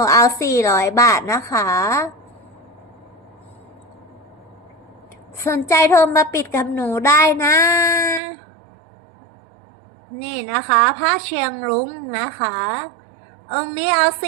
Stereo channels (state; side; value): drops out; left; at 8.2 s